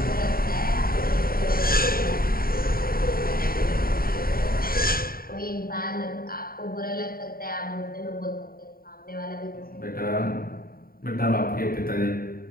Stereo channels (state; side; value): late; right; 0.43 ms